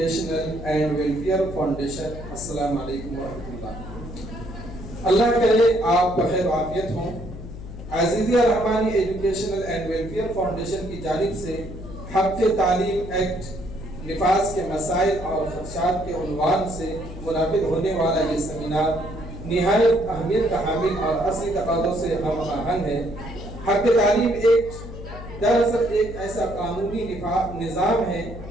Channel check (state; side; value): noise; left; hum, 12 dB below the sound